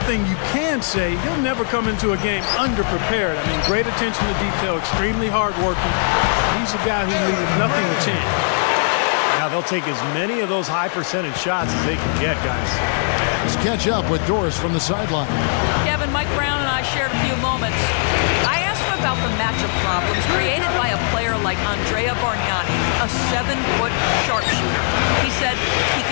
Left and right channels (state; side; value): silent; right; 66 dB below the other